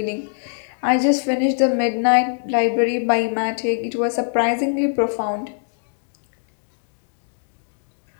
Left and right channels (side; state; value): right; silent; digital silence